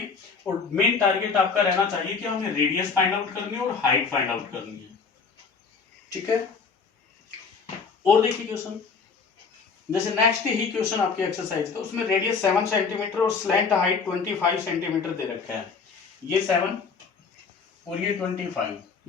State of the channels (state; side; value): quieter; right; 5.2 dB